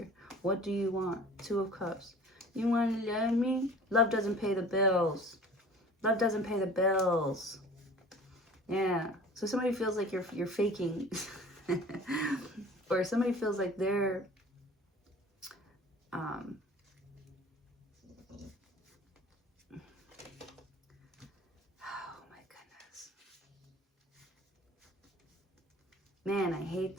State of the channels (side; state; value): both; normal; correlation 0.44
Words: What do you want? Two of Cups. You want to love me? Love doesn't pay the bills. Love doesn't pay the bills. Yeah. So somebody feels like you're faking. Or somebody feels like they're oh my goodness. Man, I hate